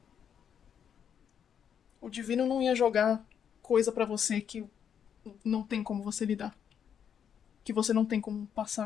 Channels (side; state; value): right; quieter; 8.2 dB